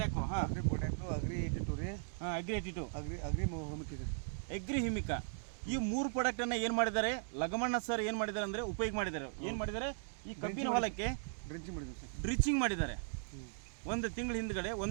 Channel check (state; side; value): silent; left; digital silence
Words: ಹಾಂ, ಅಗ್ರಿ ಪೊಟ್ಯಾಕು, ಅಗ್ರಿ 82 ರೀ. ಹಾಂ, ಅಗ್ರಿ 82, ಅಗ್ರಿ ಹೋಮಿಕ್ ಇದೆ, ಅಗ್ರಿ ಹಿಮಿಕಾ. ಈ 3 ಪ್ರಾಡಕ್ಟನ್ನು ಏನು ಮಾಡಿದ್ದಾರೆ ಲಗಮಣ್ಣ ಸರ್ ಏನು ಮಾಡಿದ್ದಾರೆ ಅಂದರೆ ಉಪಯೋಗ ಮಾಡಿದ್ದಾರೆ. ಏನು ಮಾಡಿದ್ದಾರೆ, ಈ ಕಬ್ಬಿನ ಹೊಲಕ್ಕೆ ಡ್ರಿಚಿಂಗ್ ಮಾಡಿದ್ರು ಸರ್. ಡ್ರಿಚಿಂಗ್ ಮಾಡಿದ್ದಾರೆ. 1 ತಿಂಗಳ ಹಿಂದ್ಗಡೆ,